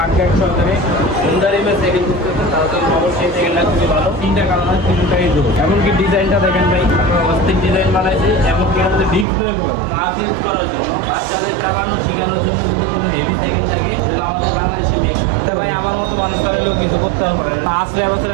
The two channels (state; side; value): drops out; left; at 9.2 s